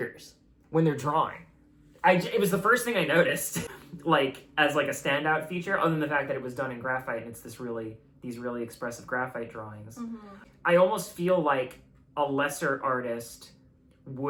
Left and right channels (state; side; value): identical; both; correlation 1.00